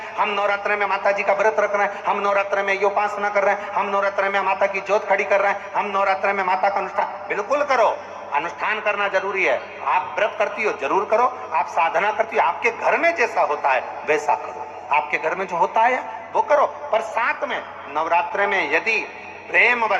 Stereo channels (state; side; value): identical; both; correlation 1.00